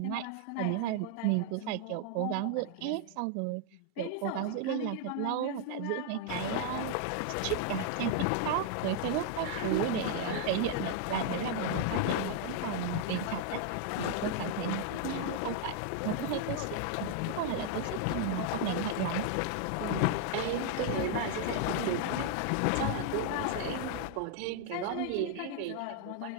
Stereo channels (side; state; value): both; different; correlation 0.00